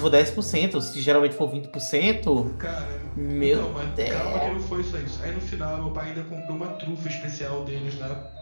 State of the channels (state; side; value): inverted; both; correlation -1.00